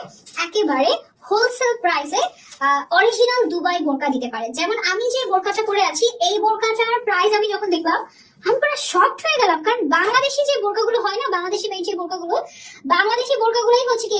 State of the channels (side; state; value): both; identical; correlation 1.00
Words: একেবারে হোলসেল প্রাইসে অরিজিনাল দুবাই বোরকা দিতে পারে। যেমন আমি যে বোরকাটা পরে আছি, এই বোরকাটার প্রাইস আমি যখন দেখলাম আমি পুরো শকড হয়ে গেলাম, কারণ বাংলাদেশি যে বোরকাগুলো হয় না, বাংলাদেশি মেড যে বাংলাদেশি বোরকাগুলোই হচ্ছে কি